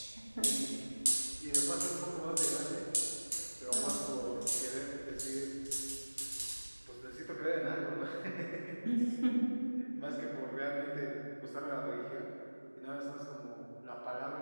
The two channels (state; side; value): inverted; both; correlation -1.00